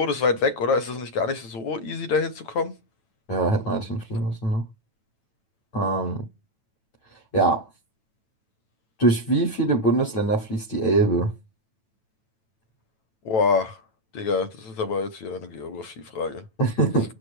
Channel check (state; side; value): late; right; 9.0 ms